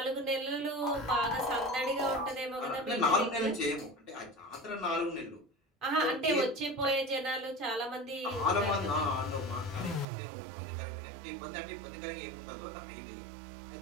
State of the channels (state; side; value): drops out; left; at 10.1 s